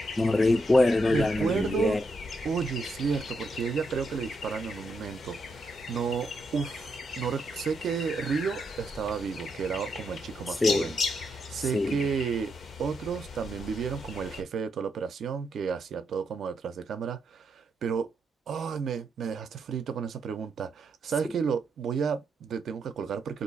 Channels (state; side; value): normal; both; correlation 0.80